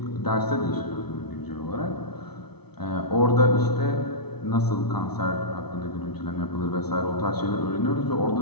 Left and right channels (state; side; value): late; right; 0.97 ms